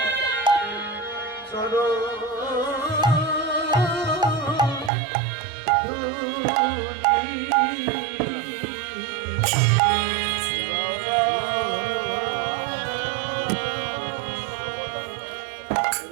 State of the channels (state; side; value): drops out; left; at 4.9 s